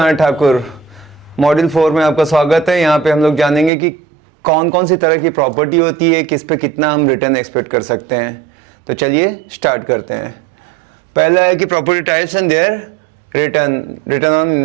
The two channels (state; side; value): drops out; left; at 3.7 s